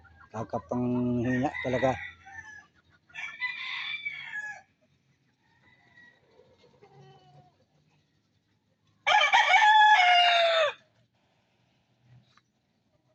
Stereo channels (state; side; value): identical; both; correlation 1.00